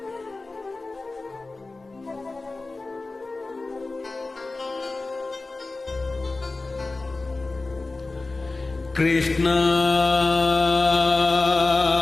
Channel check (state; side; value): quieter; right; 3.4 dB